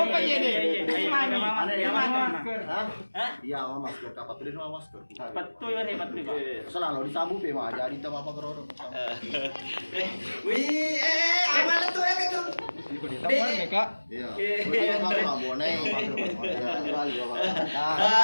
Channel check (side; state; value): both; inverted; correlation -1.00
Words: ini. Mana? Iya, masker. Kapan tuh dia masker? Betul ya hebat tuh Pak. Selalu disabu pe mah jadi teu apa keroro. Wih, amal tuh ya gitu. Iya. Kalau nggak bonai,